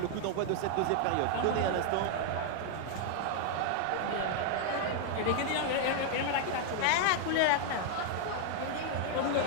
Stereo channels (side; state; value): both; different; correlation 0.00